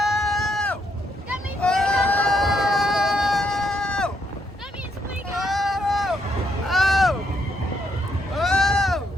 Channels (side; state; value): both; normal; correlation 0.75